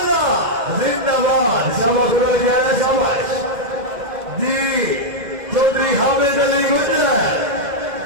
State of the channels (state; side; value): late; left; 2.1 ms